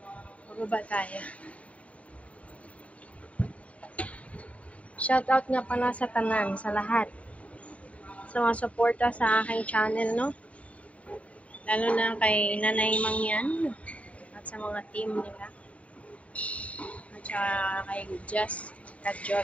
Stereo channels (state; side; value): late; right; 0.066 ms